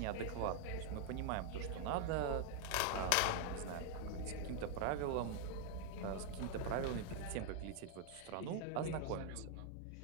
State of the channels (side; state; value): both; different; correlation 0.00